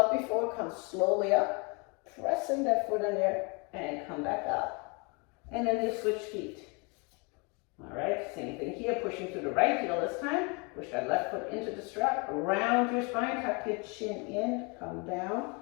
before. Come slowly up. Pressing that foot in there and come back up. And then you switch feet. All right, same thing here. Pushing to the right heel this time. Push that left foot into the strap. Round your spine. Tuck your chin in. Come down.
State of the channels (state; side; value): quieter; right; 31.5 dB